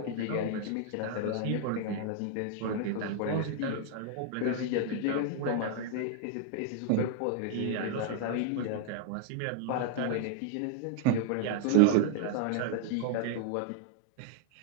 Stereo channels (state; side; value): different; both; correlation 0.00